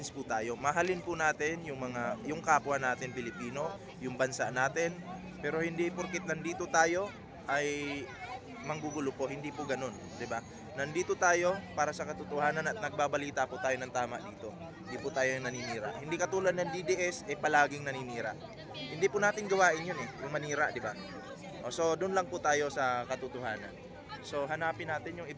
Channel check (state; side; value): identical; both; correlation 1.00